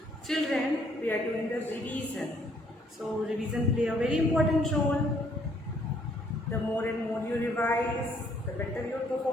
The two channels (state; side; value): normal; both; correlation 0.66